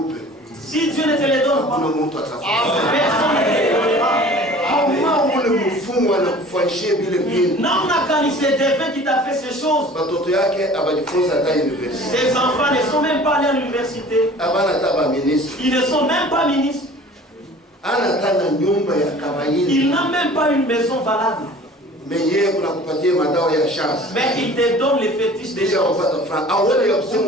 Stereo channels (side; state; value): both; normal; correlation 0.45